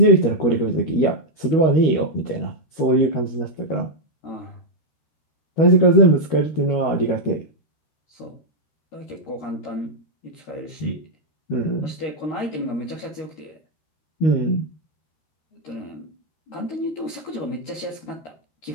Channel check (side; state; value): right; late; 13 ms